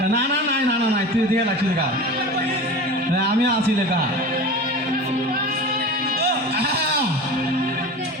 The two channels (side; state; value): both; normal; correlation 0.33